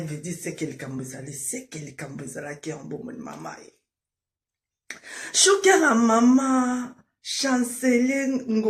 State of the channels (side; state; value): both; identical; correlation 1.00